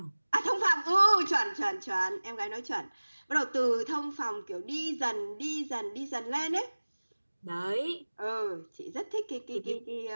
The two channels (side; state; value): both; inverted; correlation -1.00